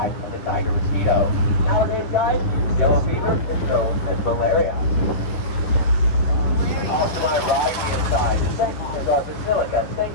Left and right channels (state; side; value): late; right; 10 ms